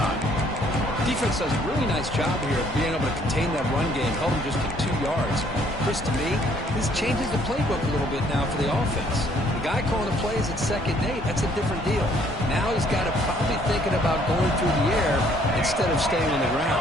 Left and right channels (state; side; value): normal; both; correlation 0.63